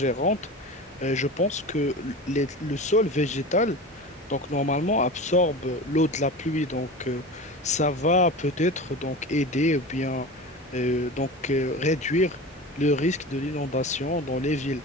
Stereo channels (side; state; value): both; normal; correlation 0.31